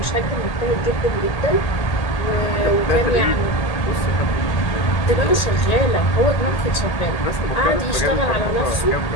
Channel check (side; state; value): right; late; 1.8 ms